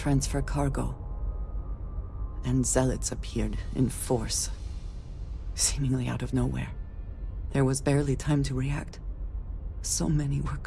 cargo, and zealots appeared in force, seemingly out of nowhere. There was barely time to react. So many were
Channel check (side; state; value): both; identical; correlation 1.00